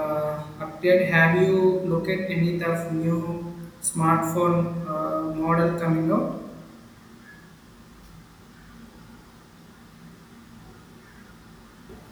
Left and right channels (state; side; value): identical; both; correlation 1.00